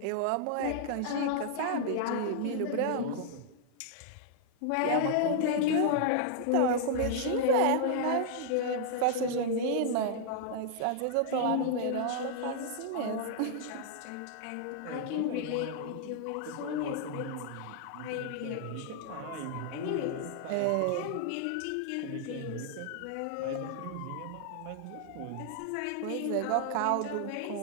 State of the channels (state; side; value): different; both; correlation -0.01